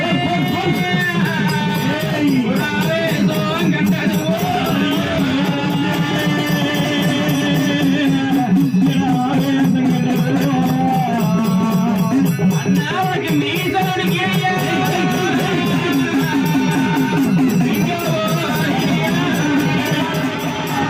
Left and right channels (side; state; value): both; identical; correlation 1.00